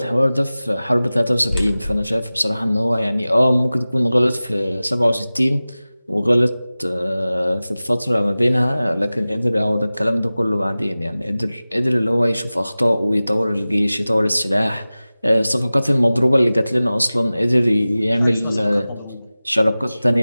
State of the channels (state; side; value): inverted; both; correlation -0.97